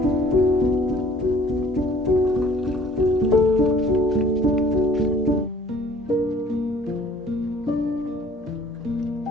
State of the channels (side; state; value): both; normal; correlation 0.53